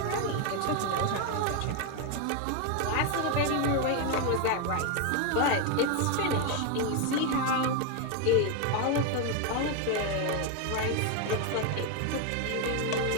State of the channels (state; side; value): different; both; correlation 0.01